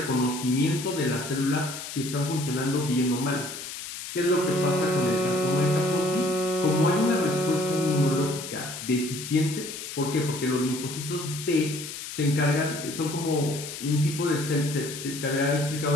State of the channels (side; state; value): left; noise; hiss, 9 dB below the sound